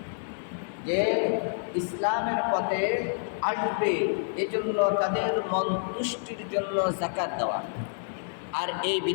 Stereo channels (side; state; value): right; silent; digital silence